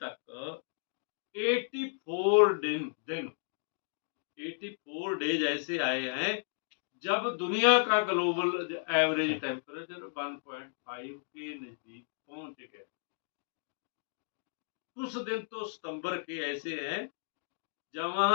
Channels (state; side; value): silent; right; digital silence